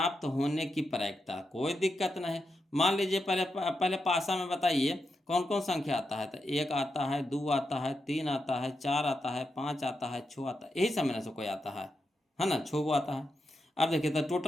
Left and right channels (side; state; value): both; normal; correlation 0.86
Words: होने की प्रायिकता। कोई दिक्कत नहीं। मान लीजिए पहले पासा में बताइए कौन कौन संख्या आता है। तो 1 आता है, 2 आता है, 3 आता है, 4 आता है, 5 आता है, 6 आता है, यही सब में से कोई आता है ना, 6 आता है। अब देखिए तो